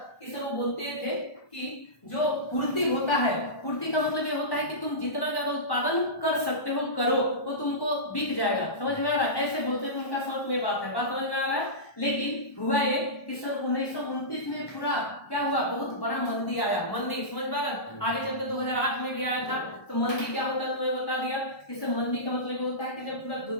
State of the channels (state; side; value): late; right; 1.2 ms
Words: कि सर वो बोलते थे कि जो पूर्ति होता है, पूर्ति का मतलब ये होता है कि तुम जितना ज्यादा उत्पादन कर सकते हो करो, वो तुमको बिक जाएगा। समझ में आ रहा है, ऐसे बोलते थे, उनका शॉर्ट में बात है, बात समझ में आ रहा है। लेकिन हुआ ये कि सन 1929 में पूरा क्या हुआ, बहुत बड़ा मंदी आया। मंदी समझ में आ रहा है, आगे चलते 2008 में भी आया था। तो मंदी क्या होता है तुम्हें बता दिया कि सर मंदी का मतलब होता है कि जब पूरा